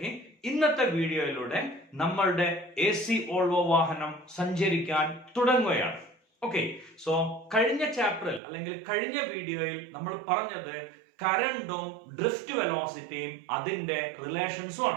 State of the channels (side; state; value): left; drops out; at 8.4 s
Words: ഇന്നത്തെ വീഡിയോയിലൂടെ നമ്മളുടെ AC വോൾവോ വാഹനം സഞ്ചരിക്കാൻ തുടങ്ങുകയാണ്. ഓക്കെ, സോ കഴിഞ്ഞ ചാപ്റ്ററിൽ അല്ലെങ്കിൽ കഴിഞ്ഞ വീഡിയോയിൽ നമ്മൾ പറഞ്ഞത് കറന്റും ഡ്രിഫ്റ്റ് വെലോസിറ്റിയും അതിന്റെ റിലേഷൻസും